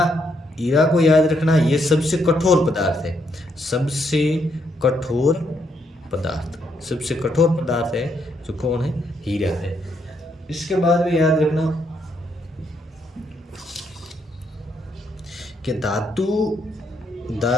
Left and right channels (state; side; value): normal; both; correlation 0.75